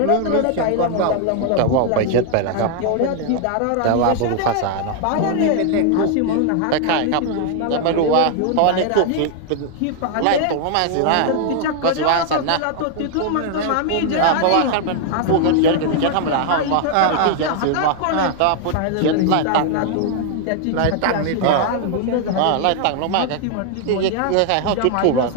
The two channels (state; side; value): different; both; correlation 0.00